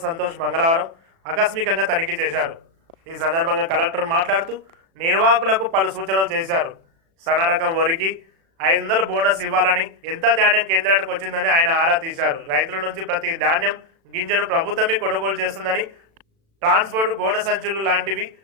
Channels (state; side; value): late; left; 36 ms